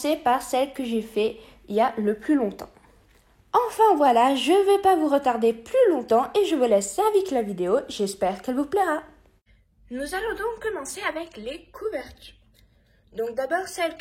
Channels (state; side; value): identical; both; correlation 1.00